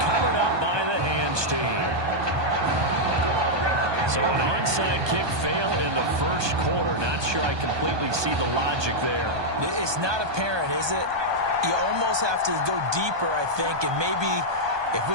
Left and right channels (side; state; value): left; late; 1.2 ms